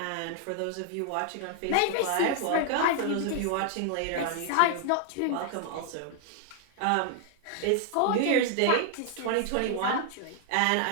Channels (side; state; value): both; different; correlation 0.00